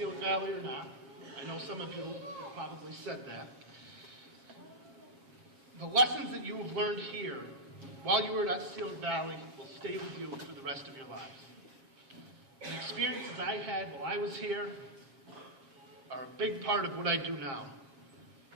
Valley or not, I know some of you have probably said that, the lessons that you have learned here while you were at Otselic Valley will stay with you for the rest of your lives. The experiences I had while I was here are a big part of what I do now.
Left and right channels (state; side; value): late; left; 7.3 ms